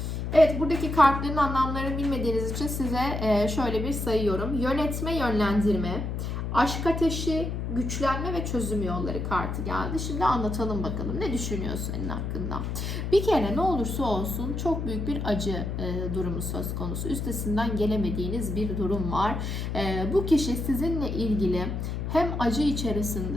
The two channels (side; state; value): left; noise; hum, 3 dB below the sound